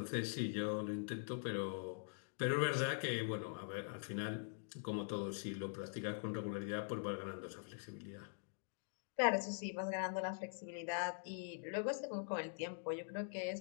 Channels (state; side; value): silent; right; digital silence